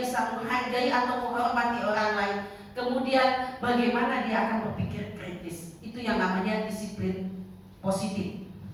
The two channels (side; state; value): both; identical; correlation 1.00